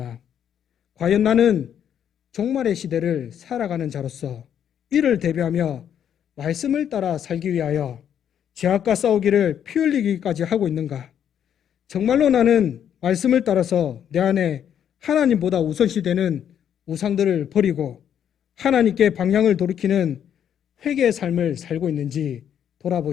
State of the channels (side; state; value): right; quieter; 9.2 dB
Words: 과연 나는 종말의 시대를 살아가는 자로서 이를 대비하며 말씀을 따라 살기 위하여 죄악과 싸우기를 피 흘리기까지 하고 있는가? 정말로 나는 말씀을 따라서 내 안에 하나님보다 우선시되는 우상들을 버리고 하나님께 방향을 돌이키는 회개의 삶을 살고 있는지